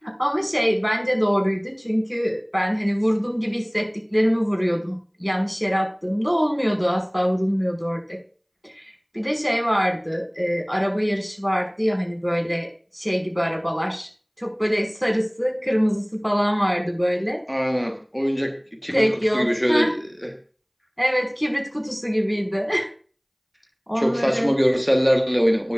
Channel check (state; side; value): identical; both; correlation 1.00